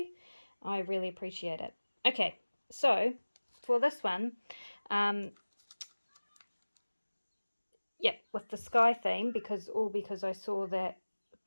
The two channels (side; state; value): both; inverted; correlation -1.00